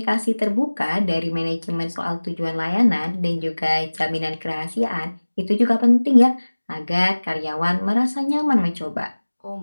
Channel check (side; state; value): both; inverted; correlation -1.00